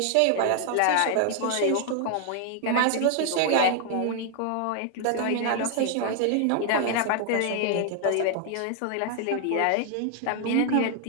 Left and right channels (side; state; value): both; different; correlation 0.00